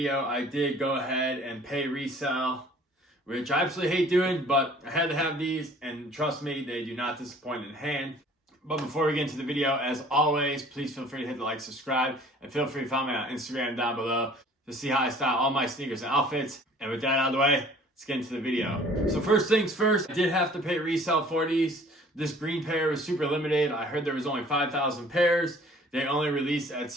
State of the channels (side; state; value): both; normal; correlation 0.52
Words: I did go ahead and pay resale, which I absolutely hate doing, but I had to have these, and trust me, they do not disappoint in hand. But before we get into the video, as always, please feel free to hit the like, subscribe, and feel free to follow me on Instagram down below to see how I style all my sneakers and outfits. And with that out of the way, let's get into the video. So first things first, I did have to pay resale for these. This green pair was super limited. I heard there was only 5,000 pairs. They only released at